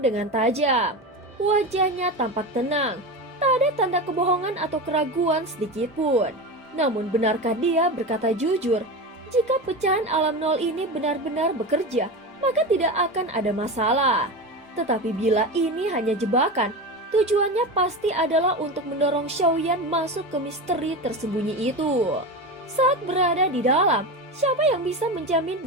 dengan tajam. Wajahnya tampak tenang, tak ada tanda kebohongan atau keraguan sedikit pun. Namun benarkah dia berkata jujur? Jika pecahan alam nol ini benar-benar bekerja, maka tidak akan ada masalah. Tetapi bila ini hanya jebakan, tujuannya pasti adalah untuk mendorong Xiaoyan masuk ke misteri tersembunyi itu. Saat berada di dalam, siapa yang bisa menjamin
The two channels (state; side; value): normal; both; correlation 0.23